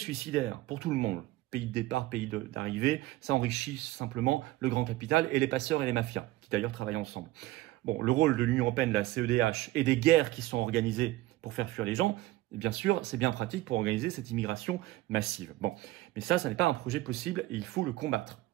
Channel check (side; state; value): left; quieter; 17.3 dB